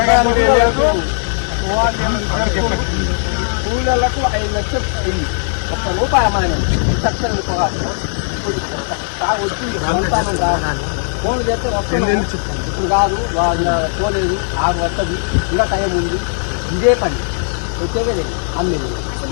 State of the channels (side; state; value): right; silent; 68 dB below the other